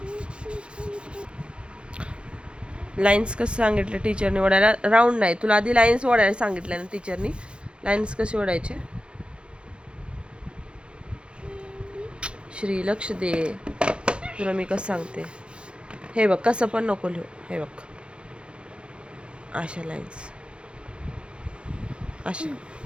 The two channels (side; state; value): left; late; 0.056 ms